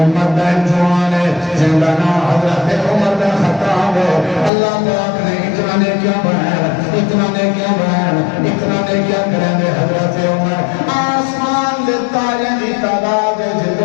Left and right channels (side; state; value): right; drops out; at 4.5 s